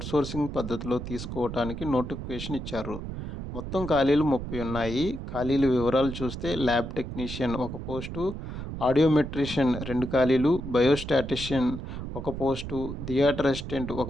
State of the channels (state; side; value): noise; right; rumble, 7 dB below the sound